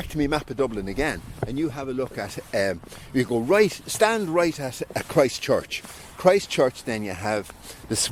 to me map of Dublin again, and you have a look at, you go stand right at Christchurch. Christchurch, then you have the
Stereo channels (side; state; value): both; identical; correlation 1.00